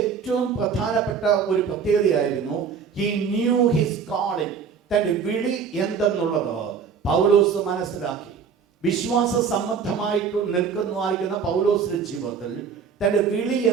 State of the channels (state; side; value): quieter; left; 6.4 dB